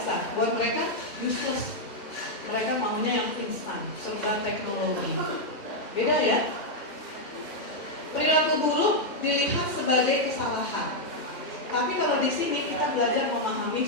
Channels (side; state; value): right; late; 2.1 ms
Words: Buat mereka, useless. Mereka maunya yang instan, serba teknologi. Beda ya? Perilaku buruk dilihat sebagai kesalahan. Tapi kalau di sini kita belajar